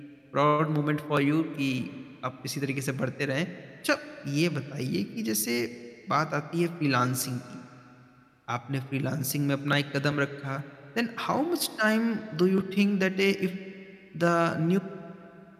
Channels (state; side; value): identical; both; correlation 1.00